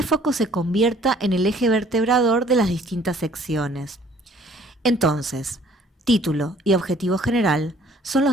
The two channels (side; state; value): both; normal; correlation 0.57